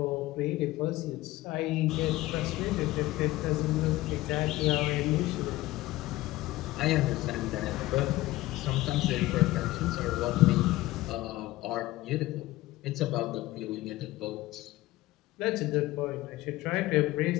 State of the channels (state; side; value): quieter; right; 17.6 dB